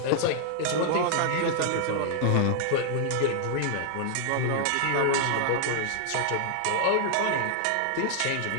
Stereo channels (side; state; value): both; different; correlation 0.00